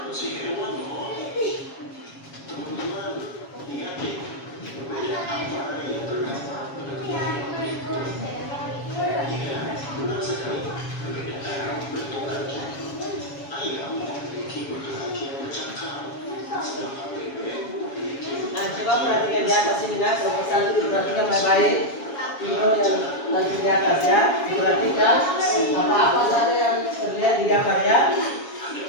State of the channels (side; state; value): right; late; 7.2 ms